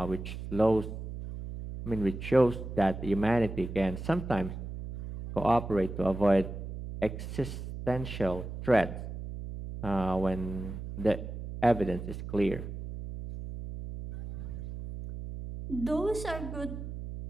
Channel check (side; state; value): right; noise; hum, 8 dB below the sound